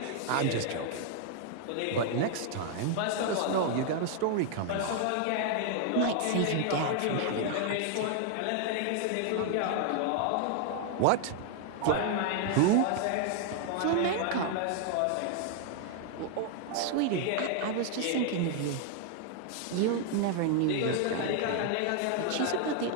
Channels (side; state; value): both; different; correlation 0.00